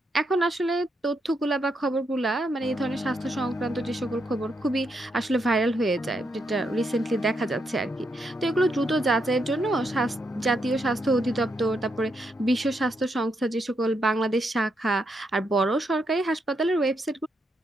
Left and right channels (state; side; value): normal; both; correlation 0.80